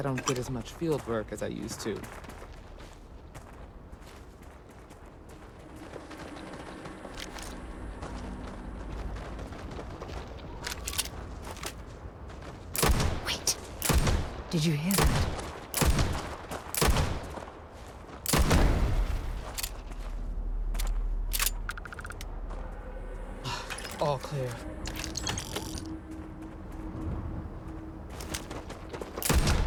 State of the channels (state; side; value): identical; both; correlation 1.00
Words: don't get as much field work as I used to. Wait. Did you hear that? All clear.